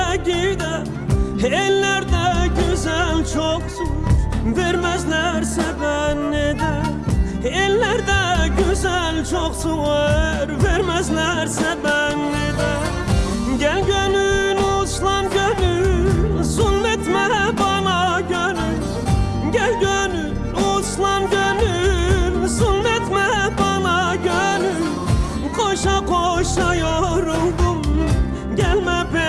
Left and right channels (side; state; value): both; identical; correlation 1.00